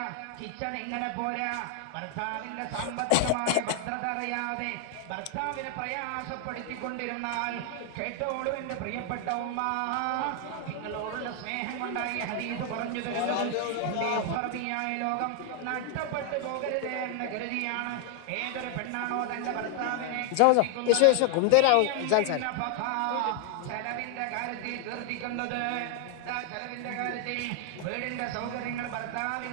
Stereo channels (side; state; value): both; different; correlation 0.00